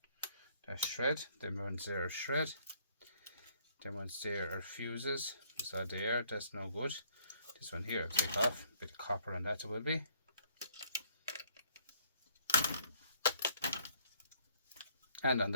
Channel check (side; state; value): both; inverted; correlation -0.64